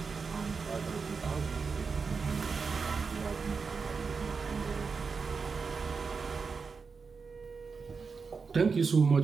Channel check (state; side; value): quieter; left; 5.1 dB